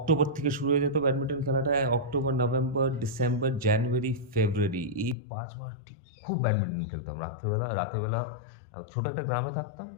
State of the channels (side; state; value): right; drops out; at 5.2 s